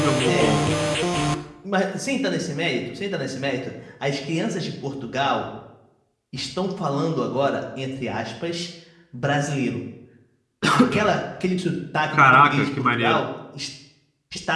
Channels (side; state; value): both; identical; correlation 1.00